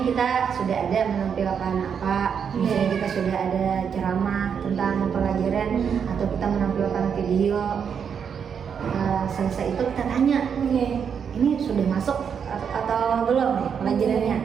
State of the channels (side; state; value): left; quieter; 7.2 dB